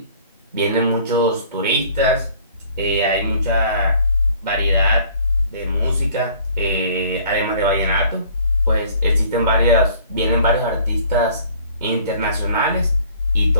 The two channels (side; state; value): both; inverted; correlation -0.53